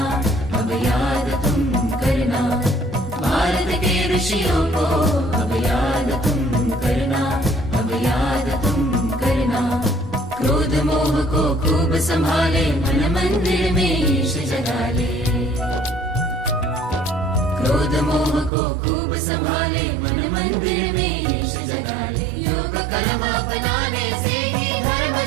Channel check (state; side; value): drops out; left; at 18.5 s